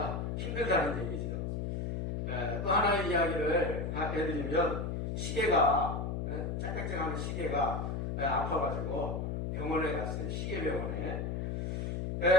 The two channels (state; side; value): noise; left; hum, 2 dB below the sound